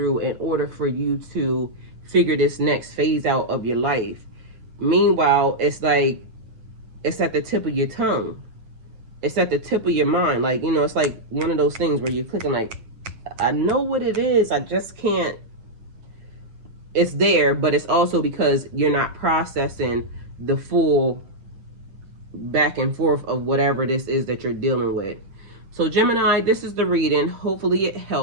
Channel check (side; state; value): left; late; 8.9 ms